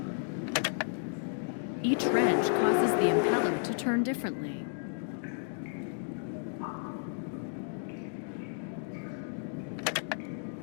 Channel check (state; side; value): silent; right; digital silence